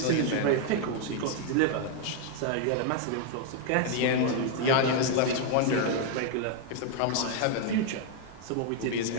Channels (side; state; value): both; different; correlation 0.00